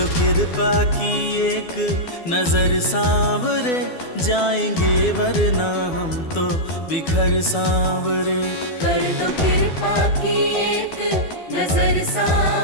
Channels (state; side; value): late; right; 12 ms